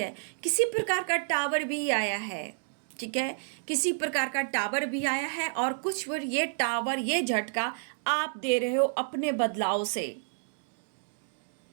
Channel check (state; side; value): silent; left; digital silence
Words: किसी प्रकार का टावर भी आया है, ठीक है, किसी प्रकार का टावर भी आया है, और कुछ बार ये टावर, ये झटका आप दे रहे हो अपने बदलाव से।